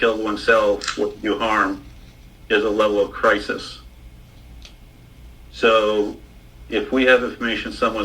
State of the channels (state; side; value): identical; both; correlation 1.00